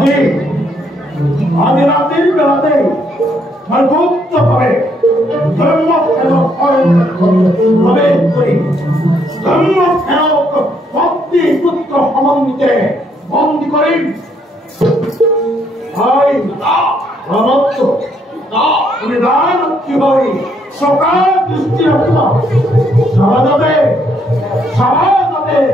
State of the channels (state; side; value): normal; both; correlation 0.71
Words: আজি ৰাতিৰ বেলাতে গুপ্তভাৱে প্ৰৱেশ কৰি ধৰ্মসেৱক ভক্তি পুত্ৰ সমন্বিতে বন্দী কৰিম। কি হয় চকা দৃষ্টি ৰাখিব সমাজতে